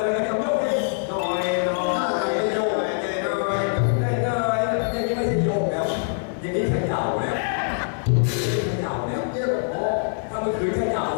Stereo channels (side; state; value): right; silent; digital silence